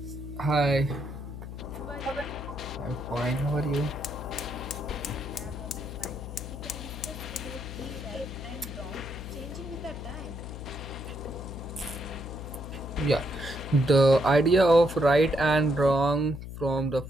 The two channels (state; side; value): noise; left; hum, 9 dB below the sound